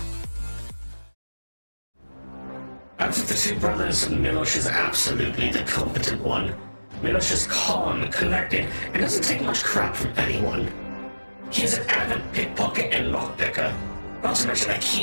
Out of the two brothers, Milosh is absolutely the competent one. Milosh is calm, collected, and doesn't take much crap from anyone. He's an avid pickpocket and lockpicker. Not to mention a key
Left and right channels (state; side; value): inverted; both; correlation -1.00